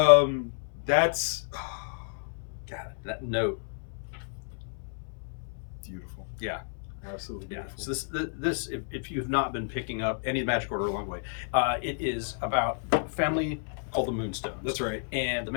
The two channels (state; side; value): silent; right; 58 dB below the other